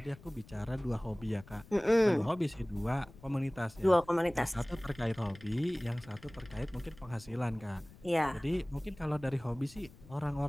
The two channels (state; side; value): noise; left; rumble, 21 dB below the sound